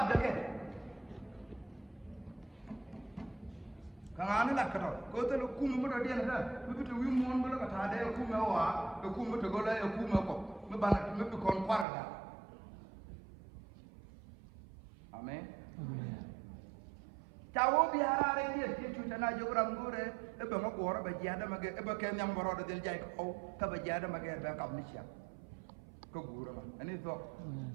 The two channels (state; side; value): drops out; left; at 11.9 s